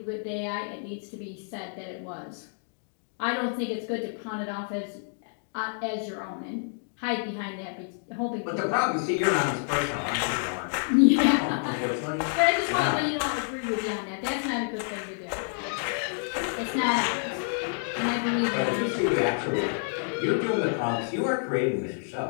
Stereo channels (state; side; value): silent; right; digital silence